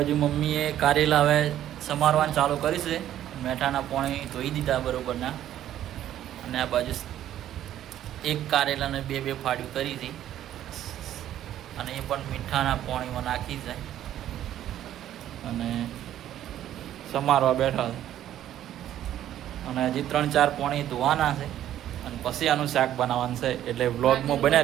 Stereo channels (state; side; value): quieter; left; 11.9 dB